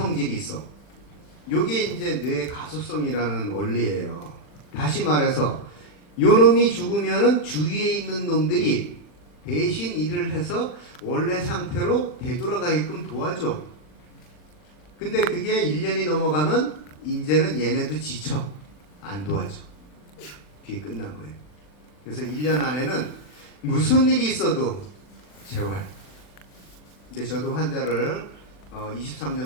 있어. 요게 이제 뇌 가소성이라는 원리예요. 다시 말해서 요 놈이 죽으면은 주위에 있는 놈들이 대신 일을 해서 원래 상태로 되돌아가게끔 도와줘. 근데 그게 1년이 넘어가면 이제는 얘네도 지쳐. 안 도와줘. 그게 끝난 거예요. 그래서 1년 안에는 무슨 일이 있어도 재활. 근데 저도 환자를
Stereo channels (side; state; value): right; late; 40 ms